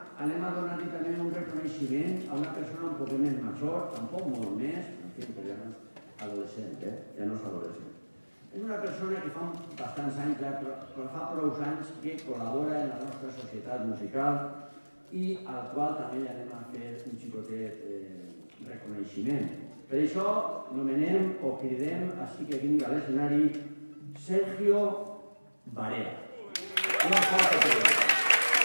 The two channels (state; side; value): inverted; both; correlation -1.00